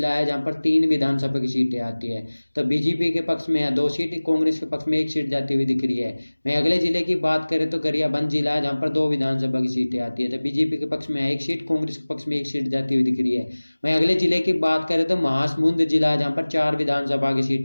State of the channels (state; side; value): inverted; both; correlation -1.00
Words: है, जहाँ पर 3 विधानसभा की सीटें आती है। तो बीजेपी के पक्ष में यहाँ 2 सीट, कांग्रेस के पक्ष में 1 सीट जाती हुई दिख रही है। वहीं अगले जिले की बात करें तो गरियाबंद जिला है, जहाँ पर 2 विधानसभा की सीटें आती है। तो बीजेपी के पक्ष में 1 सीट, कांग्रेस के पक्ष में 1 सीट जाती हुई दिख रही है। वहीं अगले जिले की बात करें तो महासमुंद जिला है, जहाँ पर 4 विधानसभा की